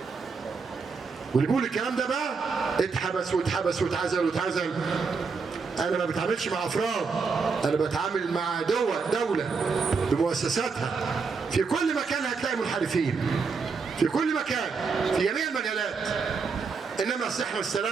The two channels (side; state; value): left; quieter; 5.0 dB